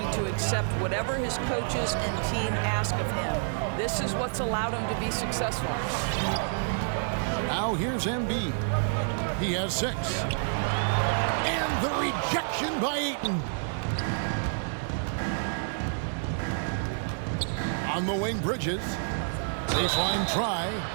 to accept whatever his coaches and team ask of him. This is what's allowed him to be successful. Now here's Embiid. He has 6. And the rejection by Ayton. On the wing, Bridges. Baseline try.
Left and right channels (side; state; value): left; silent; digital silence